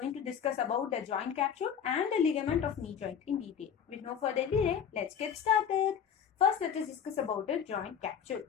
to discuss about the joint capsule and the ligament of knee joint in detail. With no further delay, let's get started. First, let us discuss about the joint capsule.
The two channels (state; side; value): quieter; right; 8.0 dB